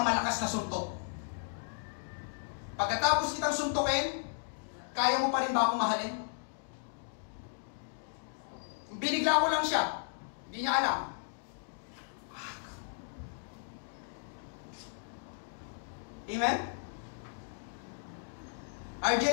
na suntok. Pagkatapos kitang suntukin, kaya mo pa rin ba akong mahalin? Binigla ko lang siya. Hindi niya alam. Amen?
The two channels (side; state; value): right; silent; digital silence